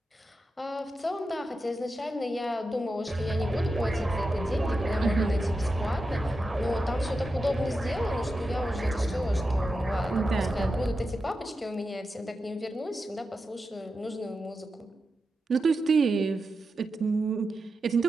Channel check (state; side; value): normal; both; correlation 0.90